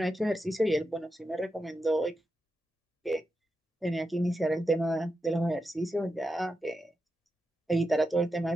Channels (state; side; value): normal; both; correlation 0.88